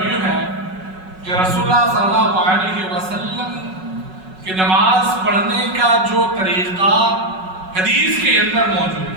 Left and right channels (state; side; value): late; left; 5.4 ms